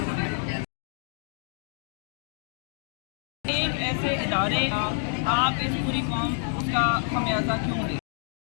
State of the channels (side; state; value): right; silent; 57 dB below the other